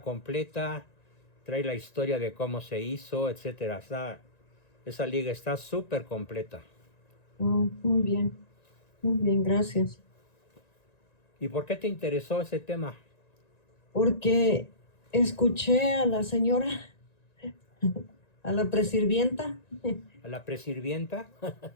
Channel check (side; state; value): right; late; 1.9 ms